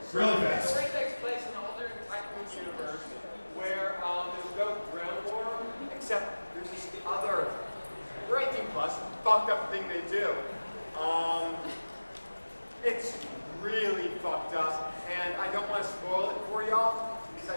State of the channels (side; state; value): both; inverted; correlation -1.00